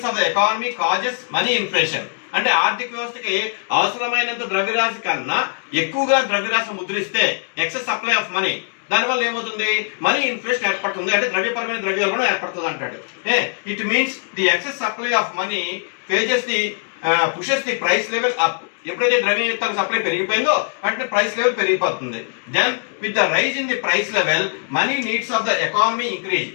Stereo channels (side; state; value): right; silent; digital silence